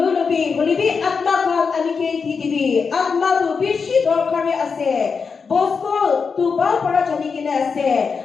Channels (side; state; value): right; quieter; 5.4 dB